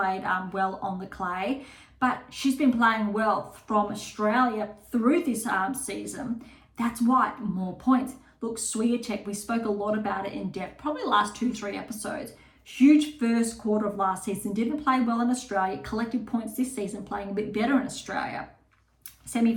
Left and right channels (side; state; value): both; identical; correlation 1.00